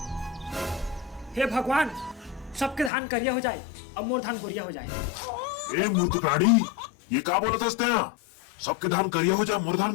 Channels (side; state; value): right; drops out; at 2.9 s